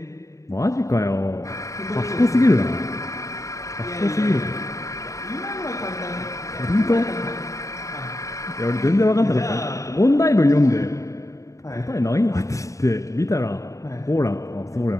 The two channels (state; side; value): late; right; 0.16 ms